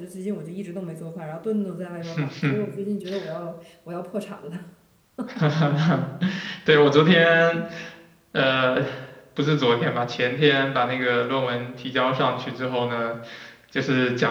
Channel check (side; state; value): both; identical; correlation 1.00